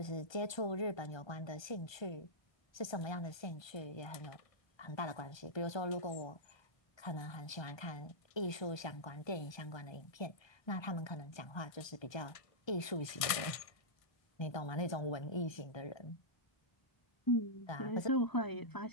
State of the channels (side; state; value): right; late; 1.5 ms